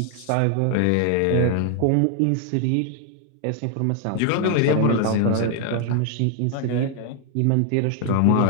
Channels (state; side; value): different; both; correlation 0.00